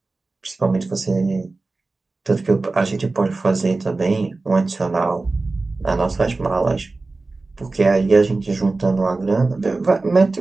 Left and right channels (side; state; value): left; quieter; 3.5 dB